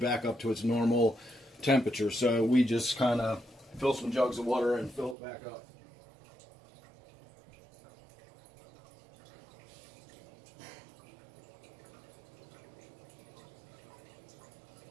up to its normal temperature. So we just kind of fill some jugs of water and fill it back up.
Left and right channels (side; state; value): left; drops out; at 5.2 s